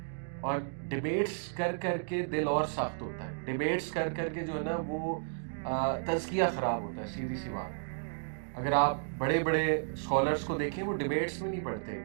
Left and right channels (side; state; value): left; silent; digital silence